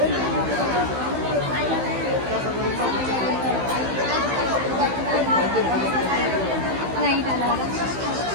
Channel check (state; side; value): late; left; 15 ms